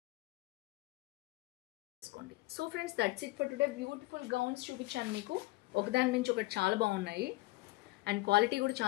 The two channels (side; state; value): right; quieter; 20.6 dB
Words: So friends that's it for today. Beautiful gowns చూపించాను మీకు, ఒకదాని నుంచి ఒకటి చాలా బాగున్నాయి. అండ్ క్వాలిటీ కూడా